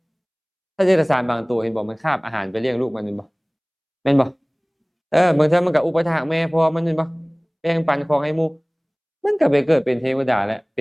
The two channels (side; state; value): both; identical; correlation 1.00